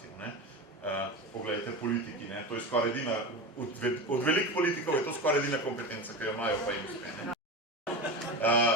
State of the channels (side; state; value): both; normal; correlation 0.24